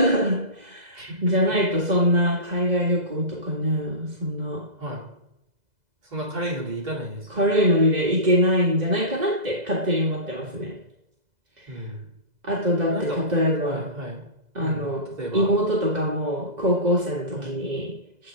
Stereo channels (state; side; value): late; left; 2.0 ms